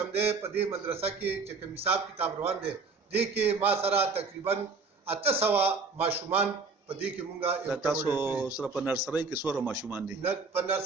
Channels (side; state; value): left; quieter; 4.5 dB